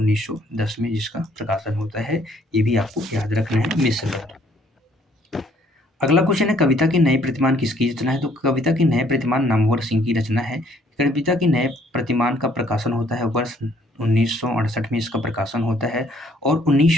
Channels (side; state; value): both; normal; correlation 0.63